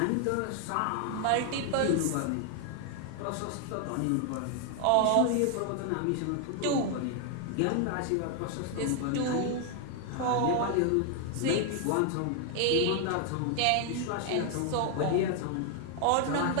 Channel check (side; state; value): both; different; correlation 0.00